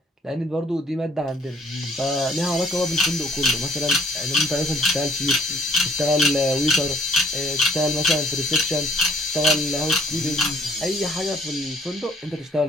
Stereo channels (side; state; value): both; normal; correlation 0.62